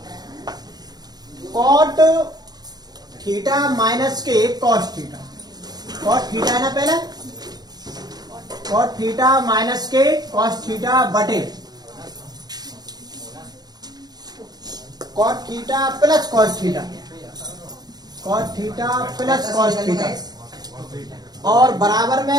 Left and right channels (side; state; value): left; late; 0.19 ms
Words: कॉट थीटा माइनस के कॉस थीटा, कॉट थीटा है ना पहले, कॉट थीटा माइनस के कॉस थीटा बटे cot theta plus cos theta, cot theta plus cos theta, और बराबर